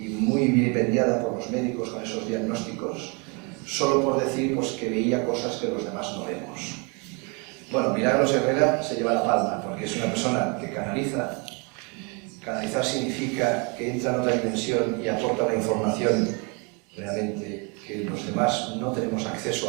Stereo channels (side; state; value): left; quieter; 32.7 dB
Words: muy vilipendiada por los médicos con esos diagnósticos, solo por decir pues, que veía cosas que los demás no vemos. Bueno, Milagros Herrera se lleva la palma, porque es una persona que canaliza. Canalizar significa que entra en otra dimensión y aporta una información realmente que los demás no tenemos